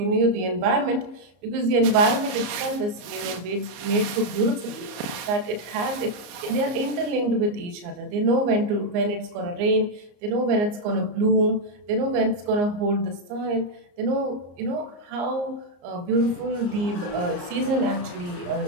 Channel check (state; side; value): late; left; 34 ms